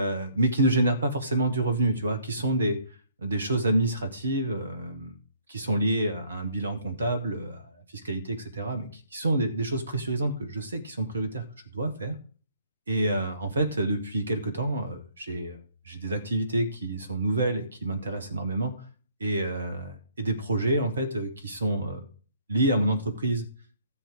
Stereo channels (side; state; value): both; inverted; correlation -0.62